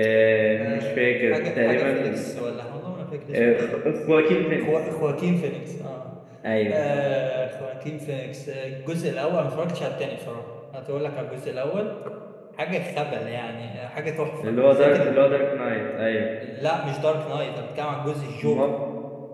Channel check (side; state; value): both; identical; correlation 1.00